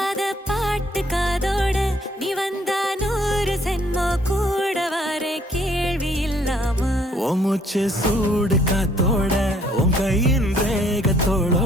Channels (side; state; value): both; normal; correlation 0.64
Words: பாட்டு காதோட நீ வந்தா 100 சென்மோ கூட வர கேள்வி இல்லாம மூச்சு சூடு காத்தோட உன் கையின்